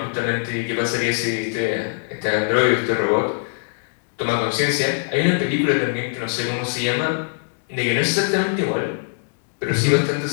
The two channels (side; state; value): right; silent; digital silence